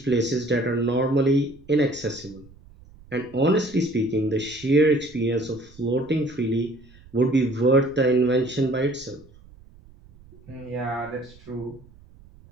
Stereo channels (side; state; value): right; noise; rumble, 24 dB below the sound